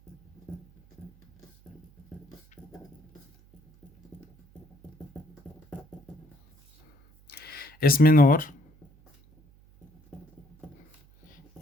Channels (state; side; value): noise; right; hum, 29 dB below the sound